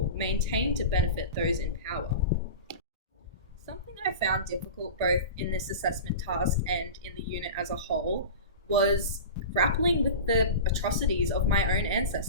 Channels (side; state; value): both; inverted; correlation -0.31